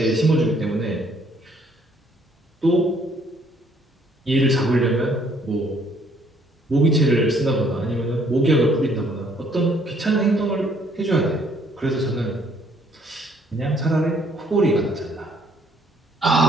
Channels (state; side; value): normal; both; correlation 0.64